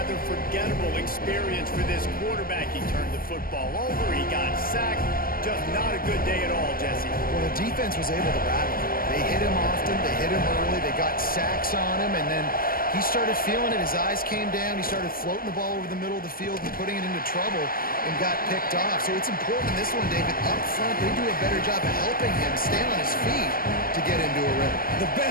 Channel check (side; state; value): right; late; 0.42 ms